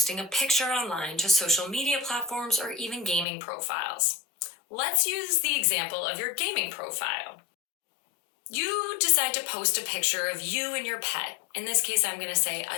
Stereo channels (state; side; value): drops out; right; at 3.2 s